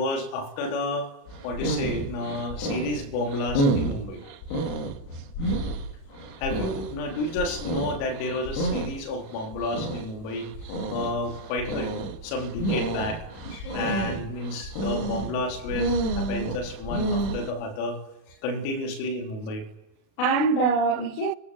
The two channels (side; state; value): right; late; 37 ms